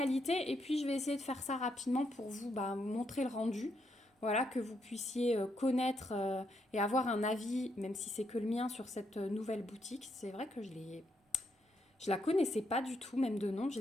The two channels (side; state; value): both; normal; correlation 0.77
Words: et puis je vais essayer de faire ça rapidement pour vous montrer le rendu. Voilà, que vous puissiez connaître et avoir un avis, même si c'est que le mien, sur cette nouvelle boutique. C'est vrai que je la connaissais pas du tout, même de nom. Je